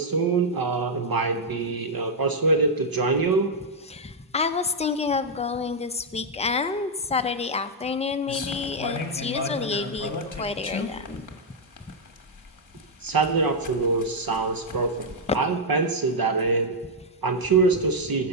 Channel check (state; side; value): normal; both; correlation -0.02